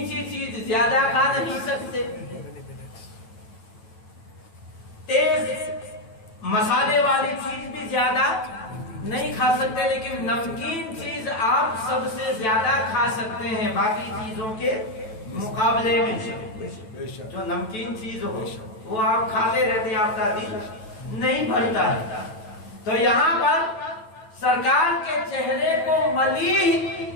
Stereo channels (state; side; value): late; right; 9.1 ms